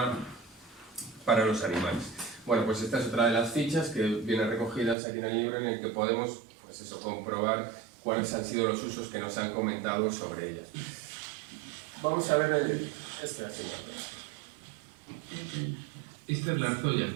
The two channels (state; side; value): drops out; left; at 5.0 s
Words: para los animales. Bueno, pues esta es otra de las fichas que vienen recogidas aquí en el libro, en el que podemos pues eso, comprobar cuáles han sido los usos que nos han comentado sobre ellas. Vamos a ver este asunto. Esta es la arzolla.